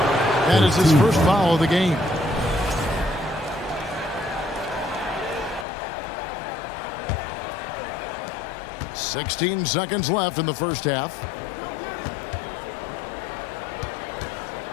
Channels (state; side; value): drops out; right; at 5.7 s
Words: That is his first foul of the game. "16 seconds left in the first half.